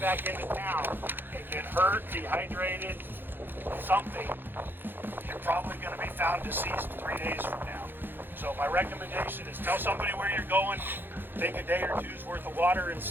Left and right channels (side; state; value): left; late; 0.098 ms